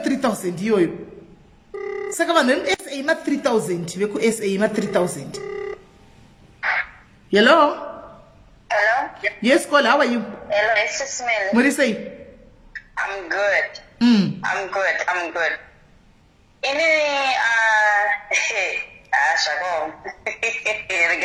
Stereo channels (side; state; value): both; identical; correlation 1.00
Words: iyoyo. Saka vanhu veSA ma 3000 veku SA ma 3000. Hello? Hello? Yes, call. How are you? Hello, SIS MELLY. What do you say? I'm good. I'm good. Shako.